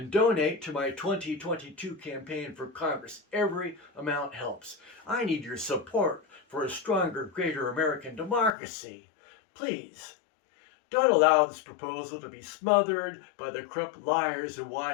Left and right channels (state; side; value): drops out; right; at 8.6 s